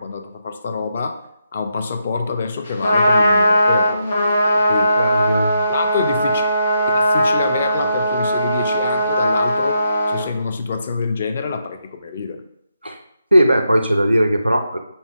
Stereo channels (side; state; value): both; inverted; correlation -0.81